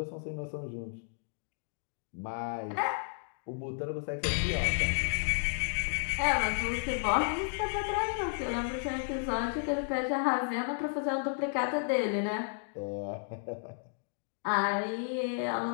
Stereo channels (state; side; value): silent; right; digital silence